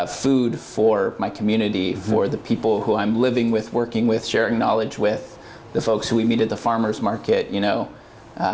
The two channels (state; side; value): identical; both; correlation 1.00